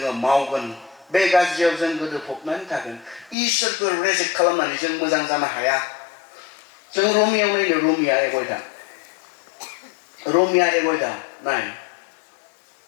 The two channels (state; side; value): drops out; right; at 3.4 s